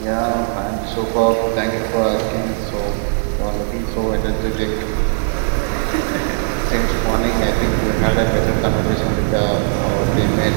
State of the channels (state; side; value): silent; left; 58 dB below the other